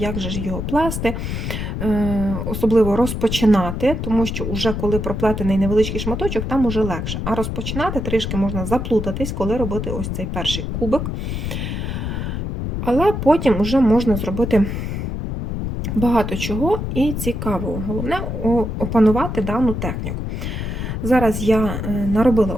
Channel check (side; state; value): left; noise; rumble, 3 dB below the sound